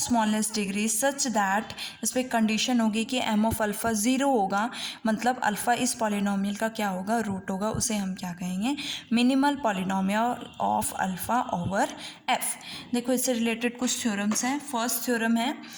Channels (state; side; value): identical; both; correlation 1.00